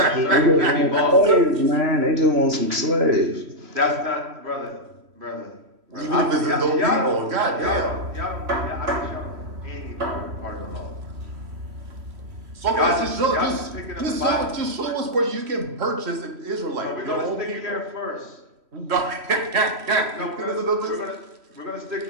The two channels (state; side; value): late; left; 3.1 ms